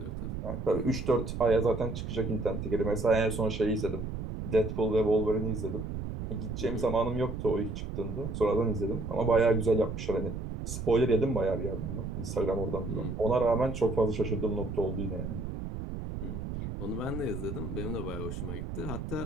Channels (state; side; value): noise; right; rumble, 6 dB below the sound